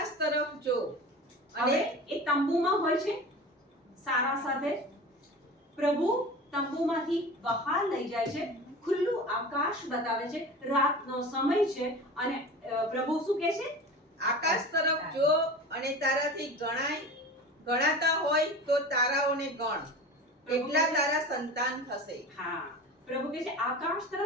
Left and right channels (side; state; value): both; normal; correlation 0.34